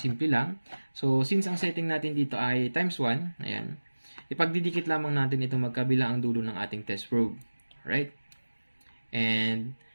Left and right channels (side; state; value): both; inverted; correlation -1.00